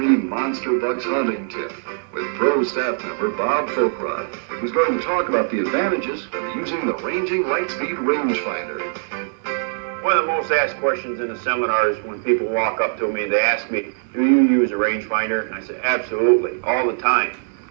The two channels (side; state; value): left; silent; digital silence